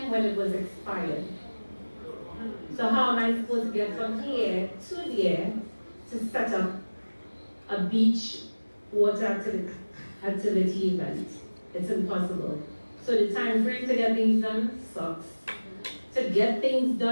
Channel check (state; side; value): inverted; both; correlation -1.00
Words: when it was expired. So how am I supposed to get from here to there to set up a beach water activity event? It's impossible. So the time frame to get things done sucks. To get things